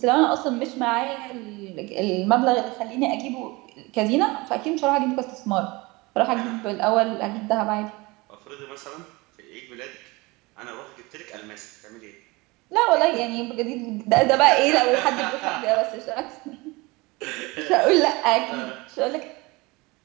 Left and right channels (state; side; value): quieter; left; 23.8 dB